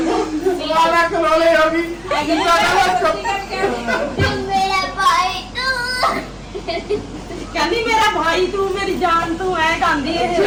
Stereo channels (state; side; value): identical; both; correlation 1.00